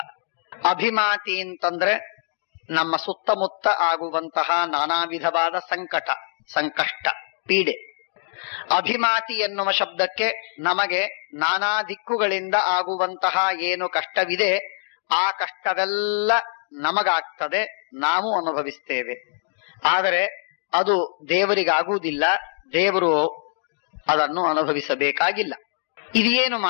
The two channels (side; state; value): right; silent; digital silence